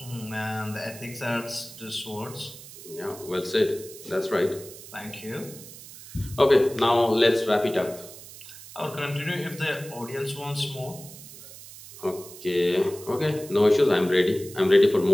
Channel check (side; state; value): right; noise; hiss, 16 dB below the sound